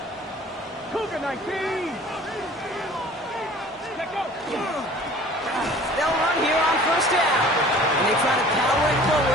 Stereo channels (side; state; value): both; normal; correlation 0.48